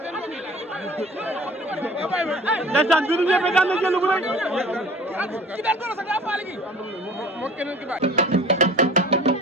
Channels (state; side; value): normal; both; correlation 0.46